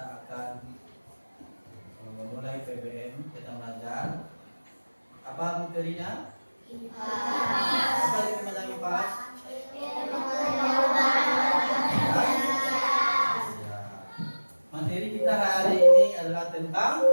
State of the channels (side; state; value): both; inverted; correlation -1.00